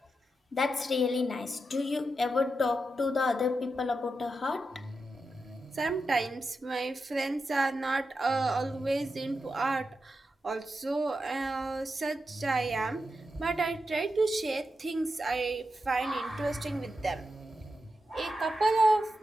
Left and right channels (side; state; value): both; normal; correlation 0.88